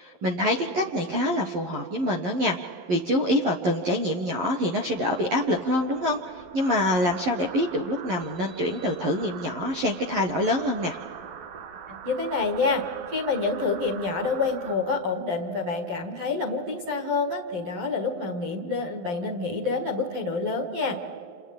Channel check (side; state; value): left; late; 11 ms